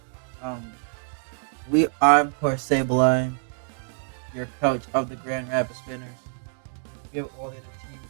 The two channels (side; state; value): left; silent; 61 dB below the other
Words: Um, I'm poor Sableye, your coach of the Grand Rapids Spinners. We have all the other teams